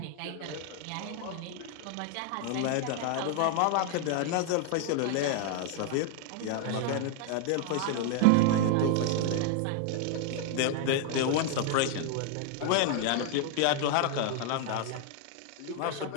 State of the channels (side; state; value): both; different; correlation 0.00